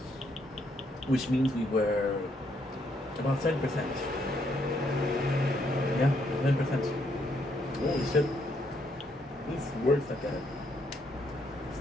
which means we were about 7%. Yeah, 7%. Holy shit. This works like that.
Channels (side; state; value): both; normal; correlation 0.73